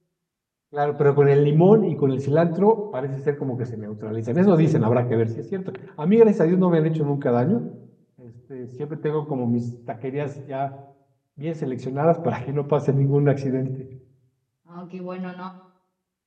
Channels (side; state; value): both; identical; correlation 1.00